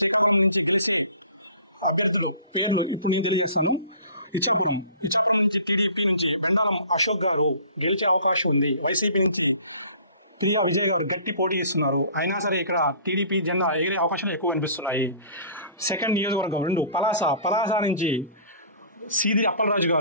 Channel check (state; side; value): inverted; both; correlation -0.47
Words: నుంచి గెలిచే అభ్యర్థుల పేర్లు ఇప్పుడు నేను తెలియజేస్తాను. ఇచ్చాపురం నుంచి టీడీపీ నుంచి బెండాలం అశోక్ గారు గెలిచే అవకాశం ఉంది. వైసీపీ నుంచి ప్రియా విజయ్ గారు గట్టి పోటీ ఇస్తున్నారు. అయినా సరే ఇక్కడ టీడీపీ జెండా ఎగిరే అవకాశం ఎక్కువ కనిపిస్తున్నాయి. సెకండ్ నియోజకవర్గం 2 పలాస నుంచి సీది అప్పలరాజు